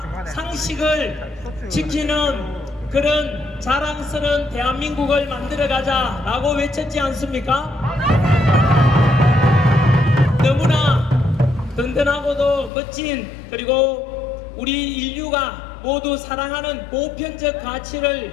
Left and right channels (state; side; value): drops out; right; at 12.7 s